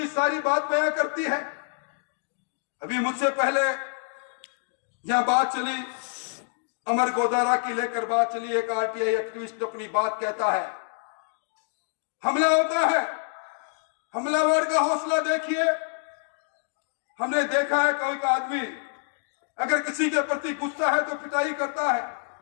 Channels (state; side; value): silent; right; digital silence